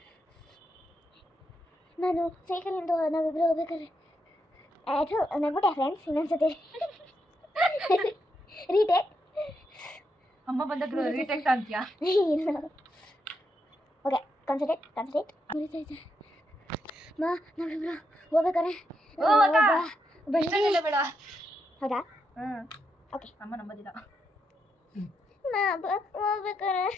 ನಾನು ಸೈಕಲಿಂದ ನಾವಿಬ್ಬರು ಹೋಗ್ಬೇಕಾದ್ರೆ ಅದು ನಗ್ಬಿಟ್ಟೆ ಫ್ರೆಂಡ್ಸ್. ಇನ್ನೊಂದ್ಸತಿ ರೀಟೇಕ್. ಅಮ್ಮ ಬಂದಾಗ ರೀಟೇಕ್ ಅಂತೀಯಾ? ಇಲ್ಲ, ಓಕೆ, ಕಾನ್ಸಂಟ್ರೇಟ್. ಉರಿತೈತೆ. ನಾವಿಬ್ರು ಹೋಗ್ಬೇಕಾರೆ ಬೇಡ. ಹೌದಾ? ಓಕೆ. ಅಮ್ಮ ನಂಬೋದಿಲ್ಲ. ಹೋಗ್ಬೇಕಾರೆ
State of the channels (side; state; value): both; normal; correlation 0.81